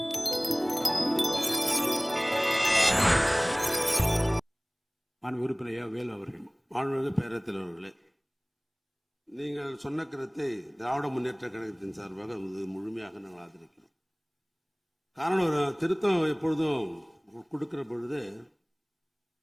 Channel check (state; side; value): identical; both; correlation 1.00